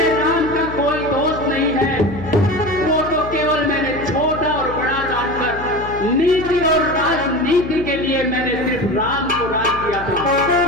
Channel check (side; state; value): left; noise; hum, 12 dB below the sound